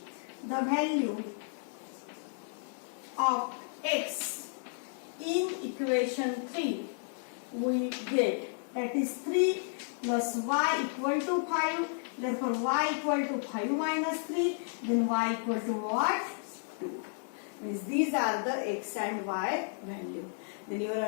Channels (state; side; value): silent; right; 56 dB below the other